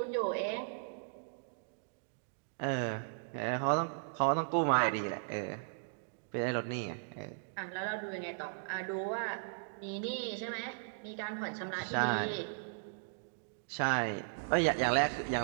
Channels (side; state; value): left; silent; digital silence